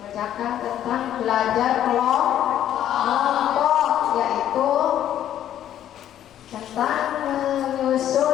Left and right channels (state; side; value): quieter; right; 11.2 dB